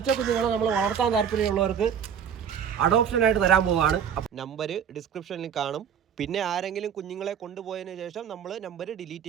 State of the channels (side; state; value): left; quieter; 8.0 dB